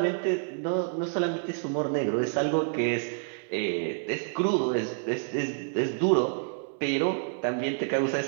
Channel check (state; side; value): silent; left; 59 dB below the other